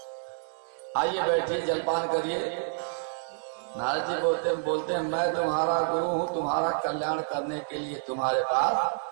आइए बैठिए जलपान करिए। नारद जी बोलते हैं मैं तुम्हारा गुरु हूँ, तुम्हारा कल्याण करने के लिए तुम्हारे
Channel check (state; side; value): silent; left; digital silence